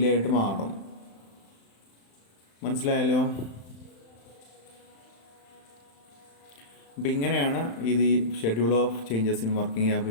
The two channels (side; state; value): right; late; 35 ms